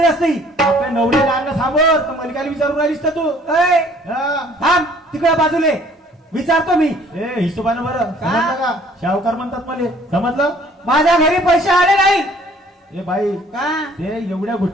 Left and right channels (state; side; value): normal; both; correlation 0.56